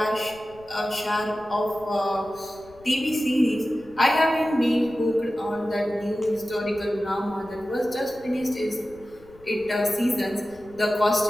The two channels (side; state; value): left; noise; rumble, 25 dB below the sound